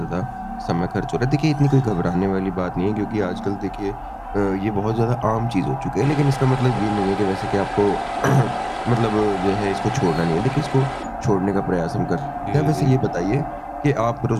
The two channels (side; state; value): both; identical; correlation 1.00